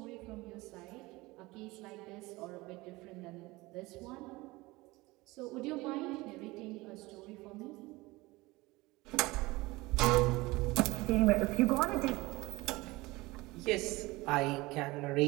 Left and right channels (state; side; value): quieter; left; 21.4 dB